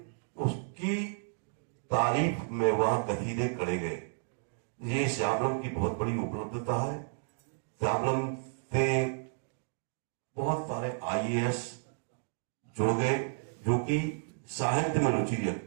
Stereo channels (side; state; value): left; silent; digital silence